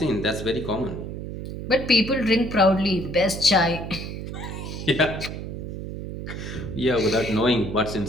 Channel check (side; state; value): right; noise; hum, 7 dB below the sound